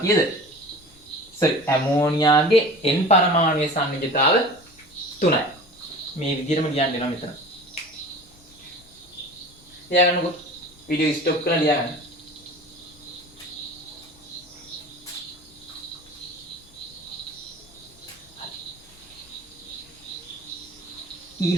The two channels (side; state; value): left; noise; rumble, 30 dB below the sound